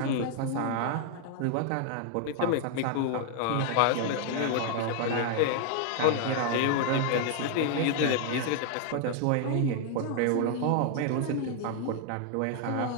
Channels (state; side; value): different; both; correlation 0.00